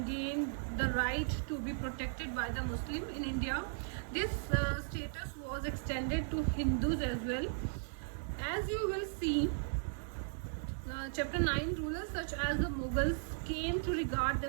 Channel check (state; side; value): silent; left; digital silence